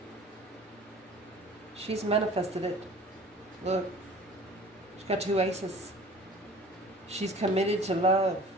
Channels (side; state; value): both; normal; correlation 0.45